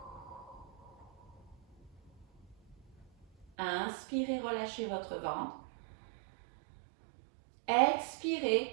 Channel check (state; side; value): drops out; left; at 3.5 s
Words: Inspirez, relâchez votre ventre.